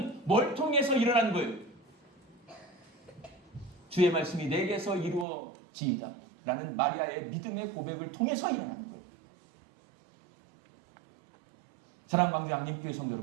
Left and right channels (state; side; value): drops out; left; at 5.2 s